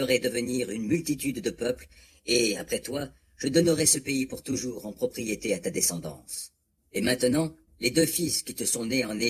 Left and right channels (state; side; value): identical; both; correlation 1.00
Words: devenir une multitude de peuples, et, après toi, je donnerai ce pays pour toujours en propriété à ta descendance. Et maintenant, les deux fils qui te sont nés en